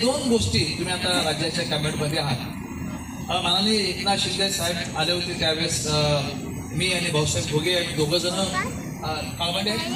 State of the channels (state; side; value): identical; both; correlation 1.00